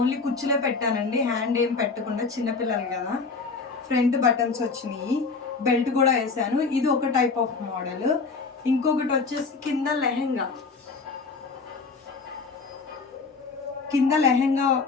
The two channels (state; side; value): quieter; right; 4.5 dB